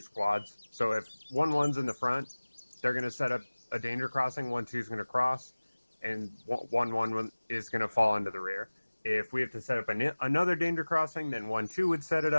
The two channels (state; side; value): inverted; both; correlation -1.00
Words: So if 1-1's in the front, they're going to set up a danger crossing, 1-2's going to cross, and 1-1 is going to fall into the rear. If we have to set up another danger crossing, then 1-2 would set it